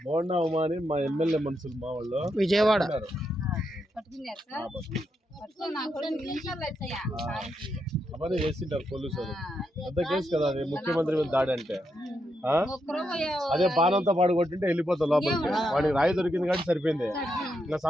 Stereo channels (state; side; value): normal; both; correlation 0.82